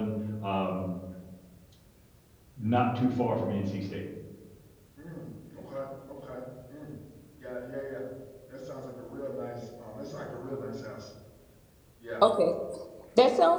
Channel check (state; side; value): identical; both; correlation 1.00